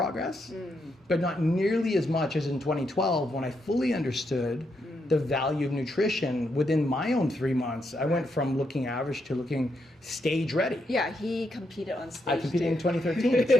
but not nearly as much as in 2012 when I fully understood the value of nutrition within my own 3 months. I went from looking average to looking stage ready. Yeah, he competed on stage. I competed in 2013, that's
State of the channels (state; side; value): normal; both; correlation 0.80